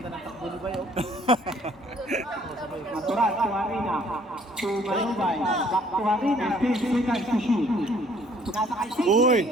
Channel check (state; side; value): normal; both; correlation 0.60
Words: ng takbo ni Bayo. Maturan to Arina. To Manubay. Back to Arina. 15 seconds to shoot. Nasa kay Signy. Uy.